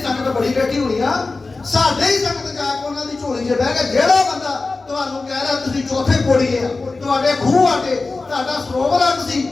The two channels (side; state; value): right; quieter; 3.6 dB